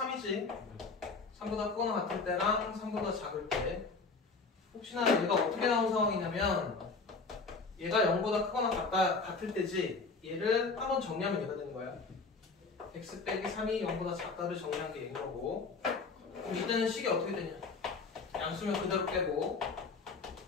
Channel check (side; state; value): right; quieter; 4.3 dB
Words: 3보다 크거나 같을 때랑 3보다 작을 때. 혹시나 얘가 어떻게 나온 상황이냐면 얘가 0보다 크거나 같을 때지 얘를 한번 정리하면 얘가 되는 거야. x 빼기 3이 0보다 작다를 정리한 게 얘인 거고 그럼 이때는 식이 어떻게 되냐 양수면 그대로 빼고